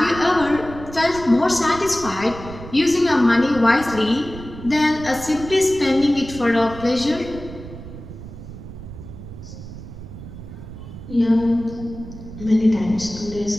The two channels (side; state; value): right; noise; rumble, 13 dB below the sound